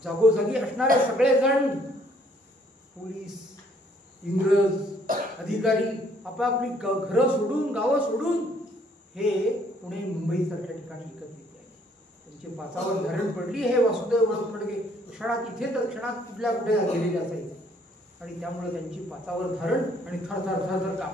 जागोजागी असणारे सगळेजण, पोलीस, इंग्रज अधिकारी आपापली घरं सोडून, गावं सोडून हे पुणे, मुंबई सारख्या ठिकाणी एकत्रित आले. त्यांची पाचावर धरण पडली. हे वासुदेव फडके क्षणात इथे तर क्षणात कुठल्या कुठे गेलेले असायचे आणि त्यामुळे त्यांची पाचावर धरण आणि थरथर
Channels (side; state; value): both; normal; correlation 0.64